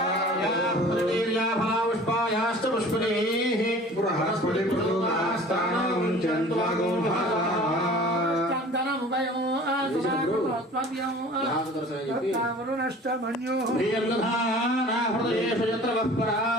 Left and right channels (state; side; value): normal; both; correlation 0.45